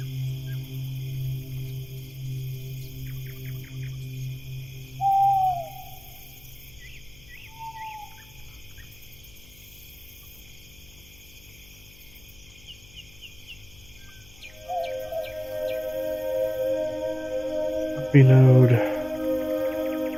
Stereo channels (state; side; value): noise; left; hum, 23 dB below the sound